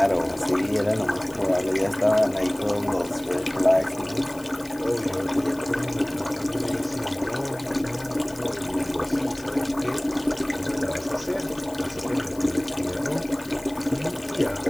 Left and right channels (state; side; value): noise; left; hiss, 20 dB below the sound